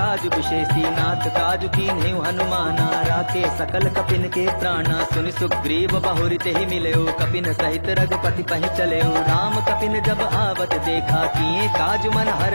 विशेषी। नाथ काजु कीन्हेउ हनुमाना, राखे सकल कपिन के प्राणा। सुनि सुग्रीव बहुरि तेहि मिलयो, कपिन सहित रघुपति पहि चलयो। राम कपिन जब आवत देखा, किए काजु मन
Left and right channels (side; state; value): both; inverted; correlation -1.00